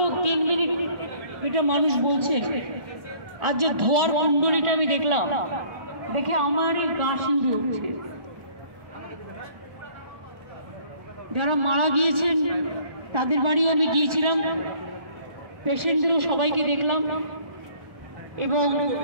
3 মিনিট এটা মানুষ বলছে, আর যে ধোয়ার কুণ্ডলিটা আমি দেখলাম, দেখে আমারই গা শিউরে উঠছে। যারা মারা গিয়েছেন তাদের বাড়িও আমি গিয়েছিলাম, পেশেন্টদেরও সবাইকে দেখলাম, এবং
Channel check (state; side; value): late; left; 1.4 ms